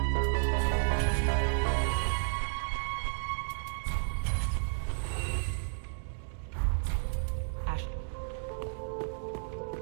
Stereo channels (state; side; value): silent; left; digital silence